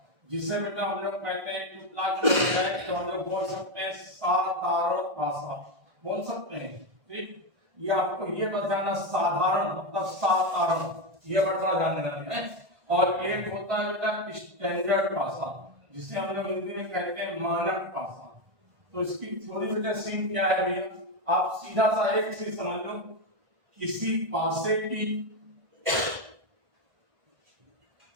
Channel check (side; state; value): left; late; 1.5 ms